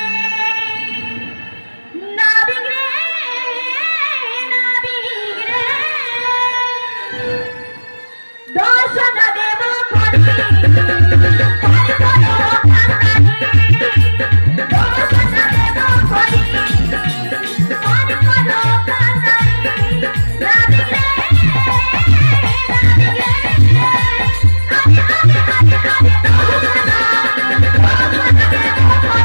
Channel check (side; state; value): both; inverted; correlation -1.00